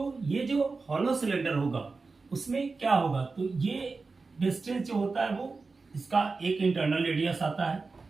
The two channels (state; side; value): quieter; left; 4.1 dB